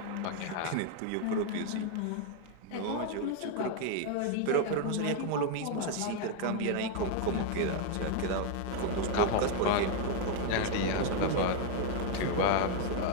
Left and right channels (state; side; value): different; both; correlation 0.00